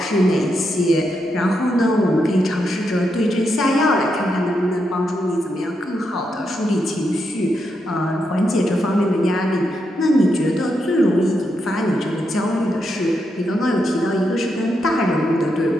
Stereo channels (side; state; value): both; normal; correlation 0.83